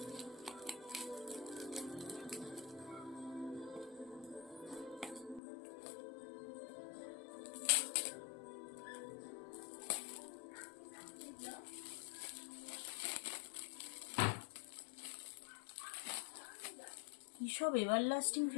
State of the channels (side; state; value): right; drops out; at 5.4 s